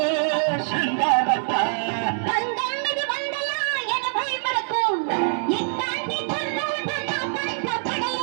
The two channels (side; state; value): left; silent; digital silence